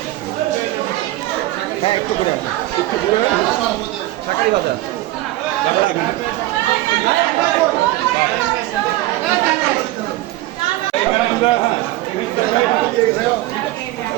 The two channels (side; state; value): left; quieter; 17.2 dB